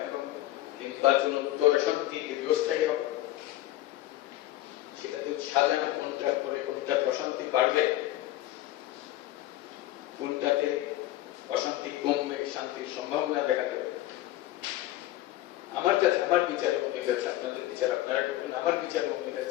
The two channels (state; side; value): quieter; right; 15.2 dB